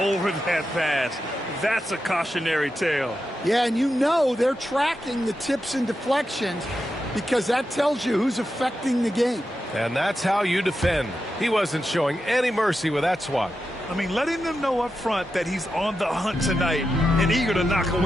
over that pass. That's a cautionary tale. Yeah, and you know they're tracking the tips and deflections because that tells you who's affecting the game. And that's how you defend. He wasn't showing any mercy with that swat. I mean, letting them know up front that he's on the hunt tonight and eager to knock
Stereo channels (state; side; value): normal; both; correlation 0.89